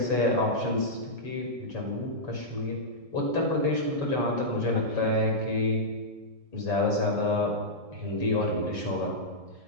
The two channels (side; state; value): left; late; 1.7 ms